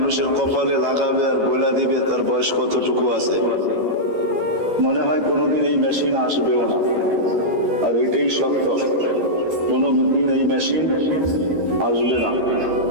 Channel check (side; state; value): left; late; 13 ms